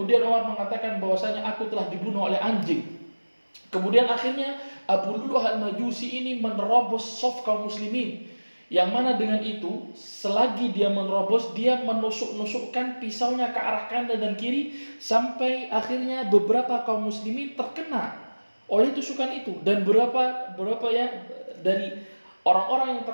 Umar mengatakan bahwasanya aku telah dibunuh oleh anjing. Kemudian akhirnya Abu Lu'lu'ah al-Majusi ini menerobos shaf kaum muslimin, yang mana dengan itu selagi dia menerobos, dia menusuk-nusukkan pisaunya ke arah kanan dan kiri, sampai akhirnya beberapa kaum muslimin terkena oleh tusukan itu, dan beberapa ya dari orang-orang yang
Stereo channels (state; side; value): inverted; both; correlation -1.00